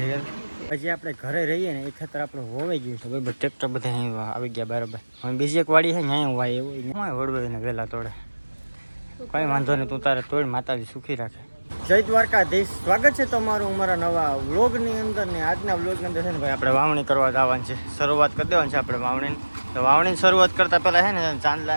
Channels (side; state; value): both; inverted; correlation -1.00